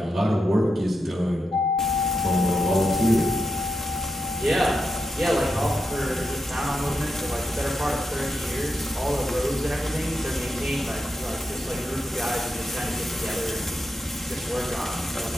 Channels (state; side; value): normal; both; correlation 0.86